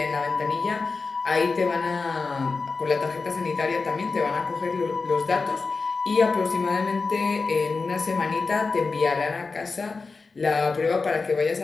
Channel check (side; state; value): right; quieter; 4.2 dB